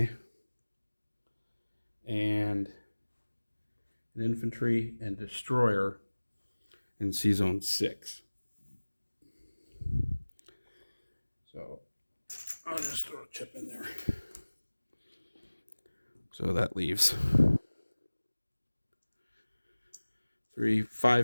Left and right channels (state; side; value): inverted; both; correlation -1.00